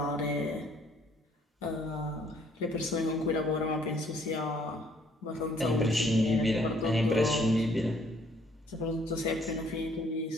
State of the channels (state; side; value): normal; both; correlation 0.63